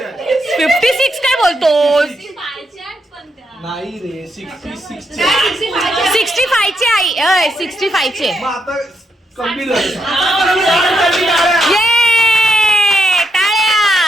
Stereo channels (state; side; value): normal; both; correlation 0.81